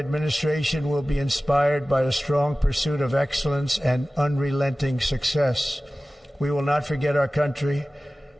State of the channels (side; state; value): both; normal; correlation 0.97